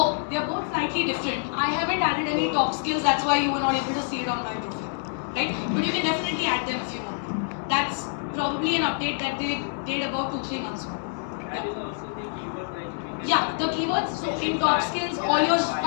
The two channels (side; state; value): right; silent; 61 dB below the other